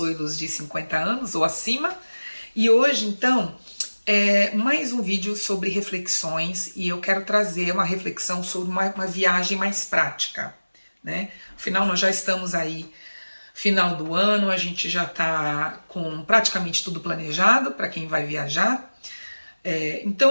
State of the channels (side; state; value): both; inverted; correlation -1.00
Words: de 50 anos ou acima. E hoje, então, é mais um vídeo sobre reflexões e eu quero trazer uma reflexão sobre uma viagem mais prática, né? Afinal, nós já estamos aí final do ano, a gente já está com praticamente tudo planejado para quem vai viajar.